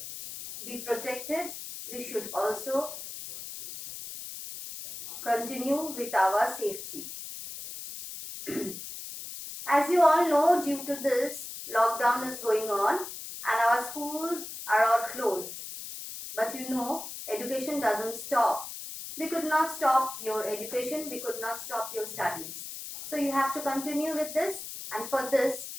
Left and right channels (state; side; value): noise; left; hiss, 9 dB below the sound